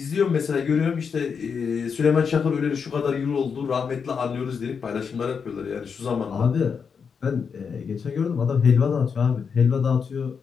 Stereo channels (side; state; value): right; quieter; 6.2 dB